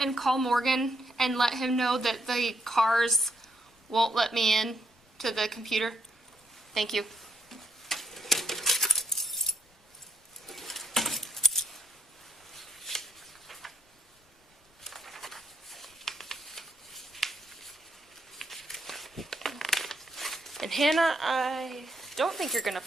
call Morgan and let him know that the cars won't let me in to the computer? Thank you. And Hannah, I don't think you're gonna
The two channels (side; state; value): both; normal; correlation 0.74